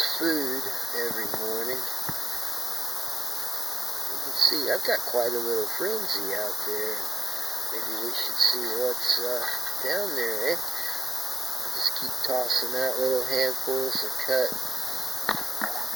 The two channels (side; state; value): both; normal; correlation 0.88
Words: food every morning. You can see I've got quite a little frenzy out there. Maybe we should see what's down there, eh? I just keep tossing out little handfuls of cut